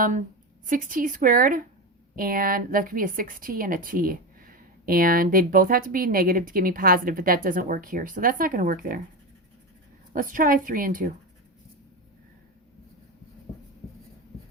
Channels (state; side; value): normal; both; correlation 0.18